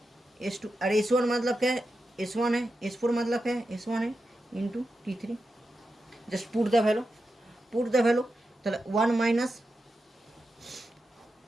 S2, और S1 मतलब क्या है, S1 है, S4 मतलब क्या है, S1 है, into T3, just put the value, put the value, तो 1 माइनस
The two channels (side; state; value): both; normal; correlation 0.89